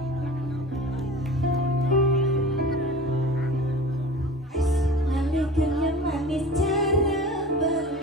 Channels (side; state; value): both; normal; correlation 0.37